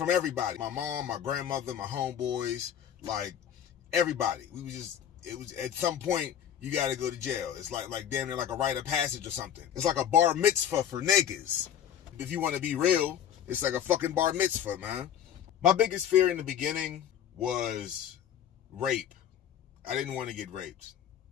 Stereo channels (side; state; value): right; quieter; 9.5 dB